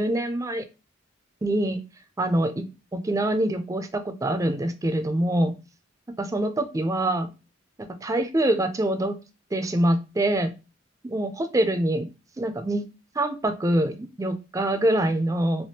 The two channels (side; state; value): both; normal; correlation 0.76